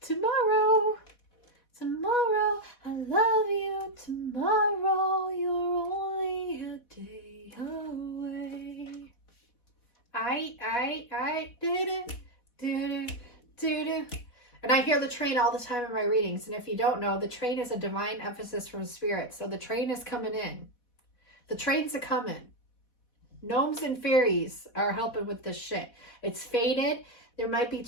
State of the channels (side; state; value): right; late; 4.1 ms